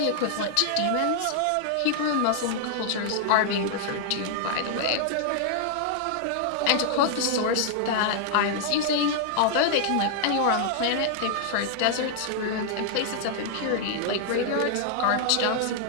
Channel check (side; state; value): both; different; correlation 0.00